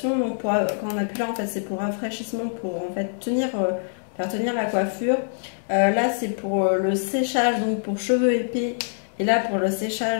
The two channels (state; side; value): silent; right; digital silence